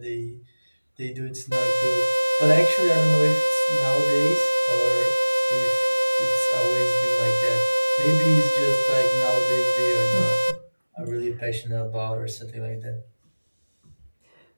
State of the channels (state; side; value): inverted; both; correlation -1.00